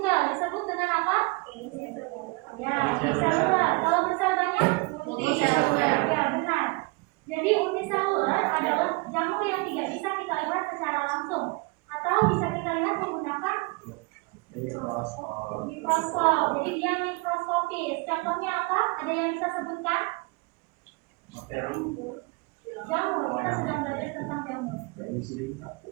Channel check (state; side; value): quieter; left; 27.9 dB